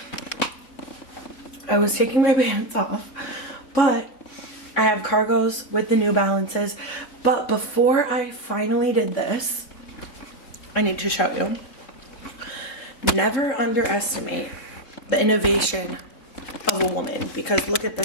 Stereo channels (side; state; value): right; late; 3.7 ms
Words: I was taking my pants off, but I have cargos with the New Balances. But before I finally did this, I need to show you. Never underestimate the innovation of a woman, because look at